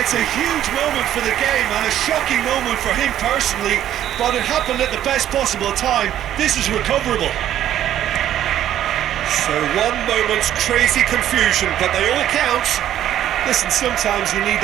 It's a huge moment for the game and a shocking moment for him personally, but it happened at the best possible time. This is recoverable. So one moment's crazy confusion, but they all count. Listen, sometimes you need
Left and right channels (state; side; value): quieter; left; 11.6 dB